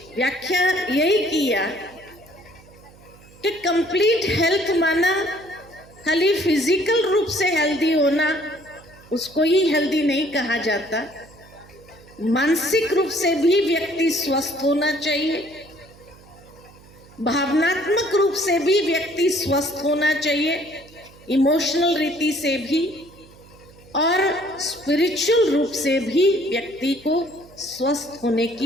व्याख्या यही किया कि कंप्लीट हेल्थ माना खाली फिजिकल रूप से हेल्दी होना, उसको ही हेल्दी नहीं कहा जाता। मानसिक रूप से भी व्यक्ति स्वस्थ होना चाहिए, भावनात्मक रूप से भी व्यक्ति स्वस्थ होना चाहिए, इमोशनल रीति से भी, और स्पिरिचुअल रूप से भी व्यक्ति को स्वस्थ होने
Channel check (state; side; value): noise; right; hum, 24 dB below the sound